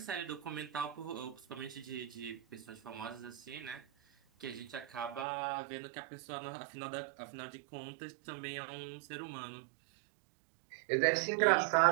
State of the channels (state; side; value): drops out; left; at 5.2 s